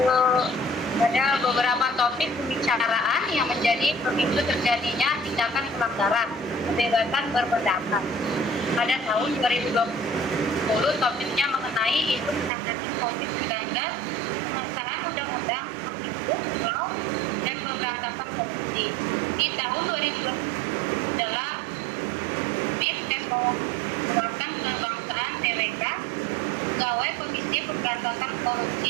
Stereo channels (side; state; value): left; drops out; at 12.5 s